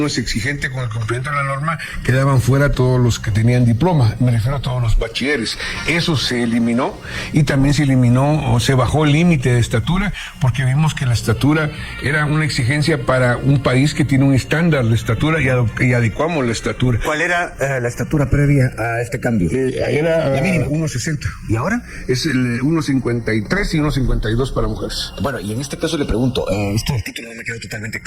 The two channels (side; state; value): both; identical; correlation 1.00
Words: es exigente con el cumplimiento de la norma, quedaban fuera todos los que tenían diploma, me refiero a todos los bachilleres. Eso se eliminó, y también se eliminó o se bajó el límite de estatura, porque vimos que la estatura era una exigencia para un país que tiene un estándar de estatura, y adecuamos la estatura. ¿Cuál era la estatura previa a este cambio? Era 1.60. ¿Y ahora? Es el 1.53 y 1.52 para mujeres. Bueno, y en este caso le pregunto, esto del título no me quedó totalmente